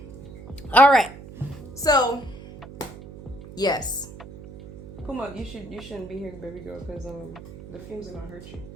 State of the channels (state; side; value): noise; right; hum, 15 dB below the sound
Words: All right. So, yes. Puma, you shouldn't be here, baby girl, because the fumes are gonna hurt you.